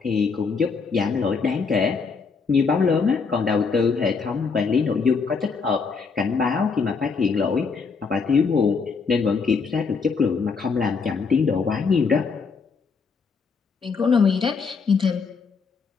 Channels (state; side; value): quieter; right; 5.1 dB